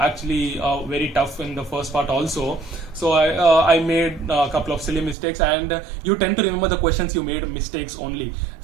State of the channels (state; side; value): drops out; left; at 5.2 s